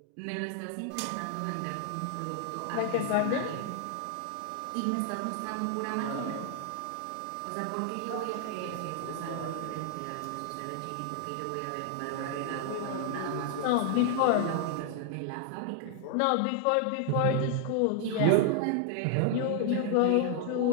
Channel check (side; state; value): both; different; correlation 0.00